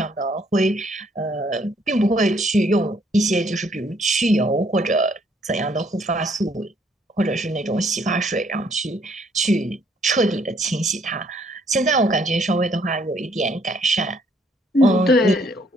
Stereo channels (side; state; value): both; normal; correlation 0.66